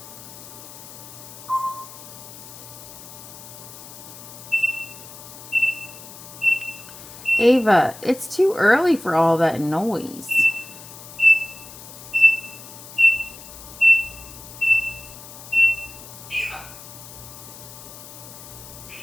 Ava, it's too early for all that noise.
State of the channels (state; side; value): noise; left; hiss, 16 dB below the sound